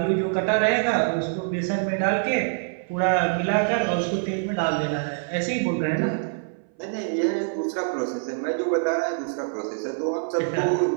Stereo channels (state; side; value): silent; left; 59 dB below the other